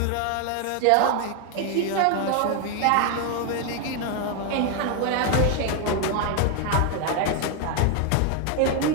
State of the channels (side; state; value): both; different; correlation 0.01